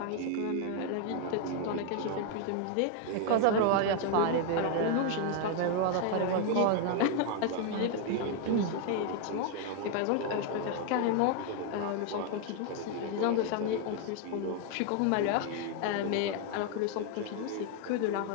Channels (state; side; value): different; both; correlation 0.00